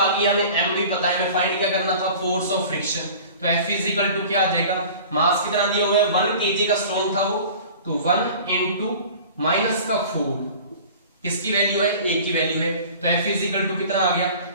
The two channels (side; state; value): both; inverted; correlation -0.42